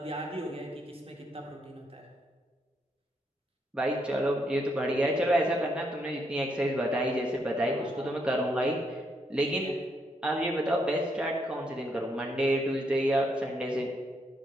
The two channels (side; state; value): both; normal; correlation 0.76